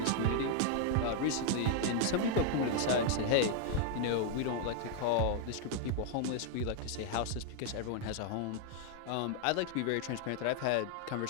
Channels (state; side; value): different; both; correlation 0.00